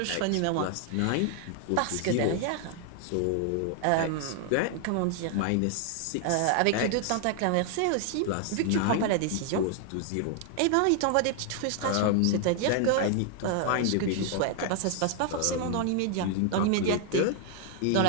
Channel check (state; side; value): different; both; correlation 0.00